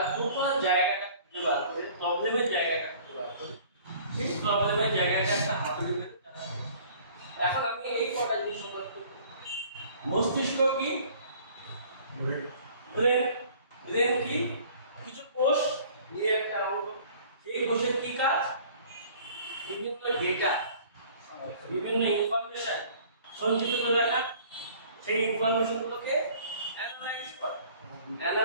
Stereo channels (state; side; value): inverted; both; correlation -0.52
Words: টোটাল জায়গাটা খুঁজে বার করে, প্রবলেমের জায়গাটা খুঁজে বার করে, সেই প্রবলেমের জায়গাটা একটা হাতুড়ি করে। এখন আমি এই কটা জিনিস সংবাদ করব। মস্তিষ্ক কি? ব্রেন। ব্রেন কি? কিছু কোষ নিয়ে একটা অঙ্গ। সেই কোষের কি কাজ? বিভিন্ন ডেটা, বিভিন্ন ইনফরমেশন সঞ্চিত করে রাখা, সেই ইনফরমেশনগুলোকে অ্যানালাইজ করা,